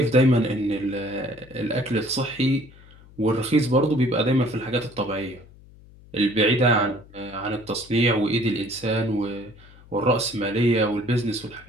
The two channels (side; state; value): left; noise; hum, 23 dB below the sound